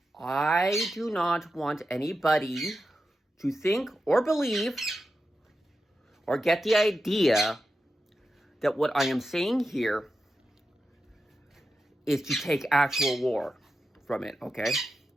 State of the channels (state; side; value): normal; both; correlation 0.90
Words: I do not want anybody to think or believe or get the idea that what I am saying here is to take actual war from it, okay?